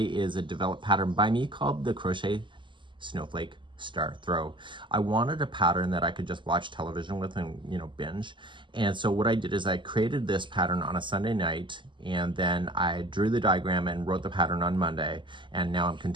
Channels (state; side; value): late; left; 0.24 ms